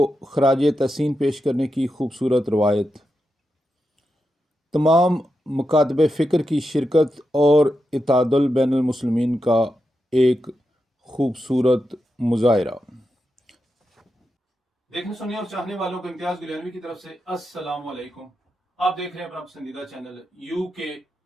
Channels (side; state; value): both; normal; correlation 0.88